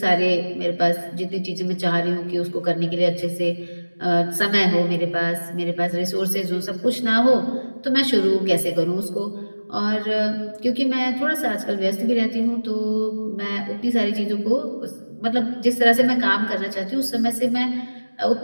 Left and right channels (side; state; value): both; inverted; correlation -1.00